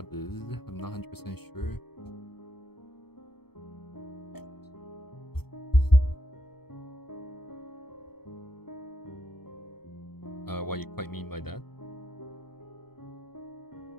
I'm not 100% sure. What you quite mean by that?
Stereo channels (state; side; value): late; right; 0.96 ms